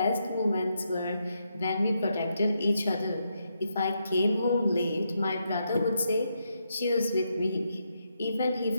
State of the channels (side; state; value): both; inverted; correlation -0.81